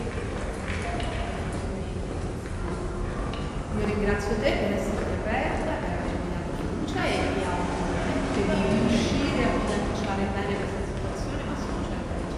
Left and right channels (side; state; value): both; identical; correlation 1.00